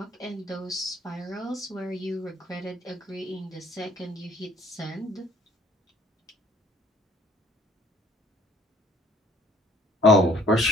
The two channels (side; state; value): both; normal; correlation 0.58